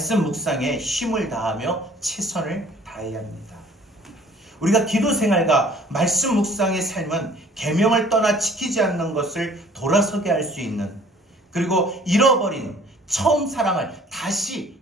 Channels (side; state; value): both; normal; correlation 0.53